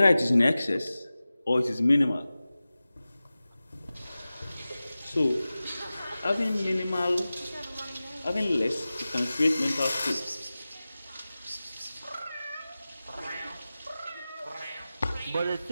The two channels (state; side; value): inverted; both; correlation -0.96